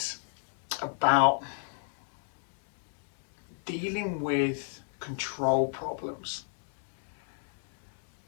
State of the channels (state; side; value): silent; right; digital silence